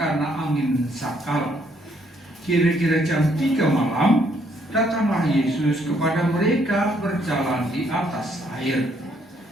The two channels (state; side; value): normal; both; correlation 0.69